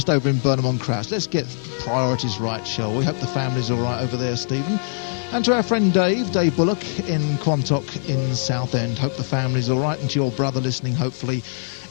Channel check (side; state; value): right; silent; digital silence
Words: over in Burnham-on-Crouch. Let's get priorities right, shall we? Hope the family's all right over there, Stephen. And to our friend Dave Bullock in Quantock in Southend. Hope the family's all right, and to your brother listening, hopefully,